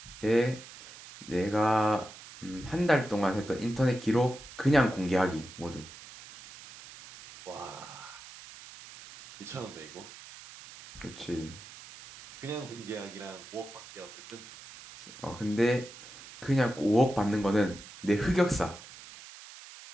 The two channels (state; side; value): noise; right; hiss, 17 dB below the sound